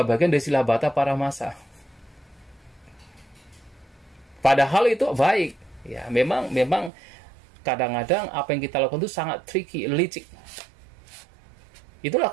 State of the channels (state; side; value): drops out; left; at 6.9 s